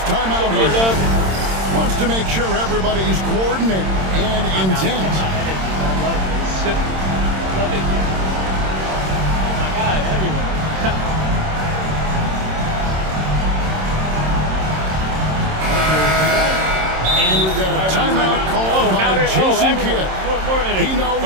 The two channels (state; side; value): late; left; 26 ms